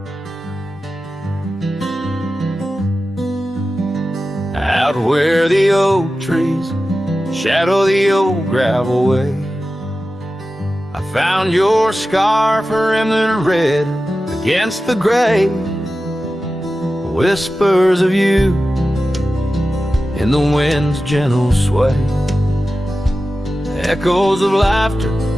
Out where the oak trees shadow the old gravel way, I found your scarf remnant red against the gray. Whispers of you in the wind's gentle sway, echoes of laughter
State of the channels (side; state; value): both; normal; correlation 0.94